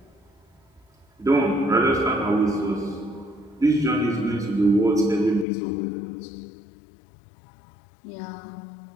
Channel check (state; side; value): drops out; right; at 5.5 s